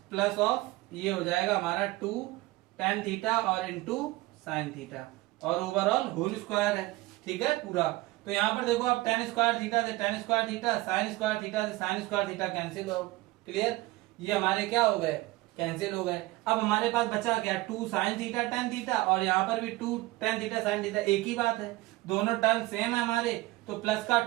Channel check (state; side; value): quieter; left; 19.8 dB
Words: प्लस ऑफ ये हो जाएगा हमारा 2 टेन थीटा और इंटू साइन थीटा, और ओवरऑल होल स्क्वायर है, ठीक है पूरा। तो यहाँ पर देखो आप टेन स्क्वायर थीटा से ten square theta, sign square theta से साइन स्क्वायर थीटा कैंसिल हो, क्लियर, ये हमारे क्या हो गए, कैंसिल हो गए। अब हमारे पास बचा क्या, 2 साइन थीटा टेन थीटा, और यहाँ पर भी 2 टेन थीटा साइन थीटा, एक ही बात है, दोनों टर्म सेम है हमारे, तो प्लस का